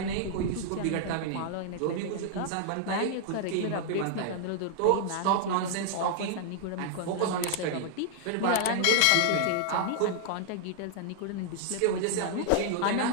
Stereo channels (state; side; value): different; both; correlation 0.00